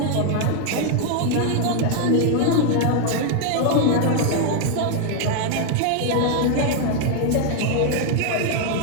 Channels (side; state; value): both; different; correlation 0.00